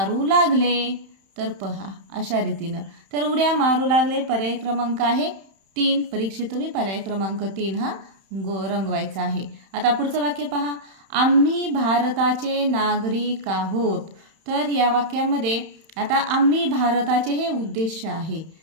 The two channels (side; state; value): left; late; 31 ms